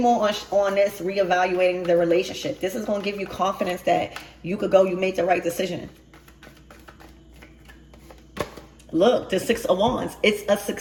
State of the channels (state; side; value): identical; both; correlation 1.00